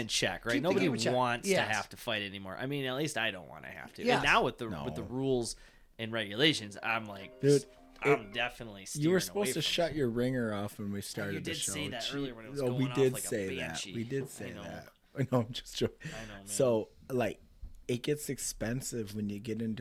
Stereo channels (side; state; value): both; identical; correlation 1.00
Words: in check, right? keep the Nobody game in check. wants to Yes. have to fight anymore. I mean, at least I don't want to have to. Yes. And now with the No. rules and regulations, I'm like, Dude, I'm definitely steering you were away supposed to from shut your ringer off when we started You the did show. say that earlier when it was Oh, going we off did like a say that. banshee. We did say I know. that. I know. I'm just joking. I know, man. So, like, it gets expensive when you get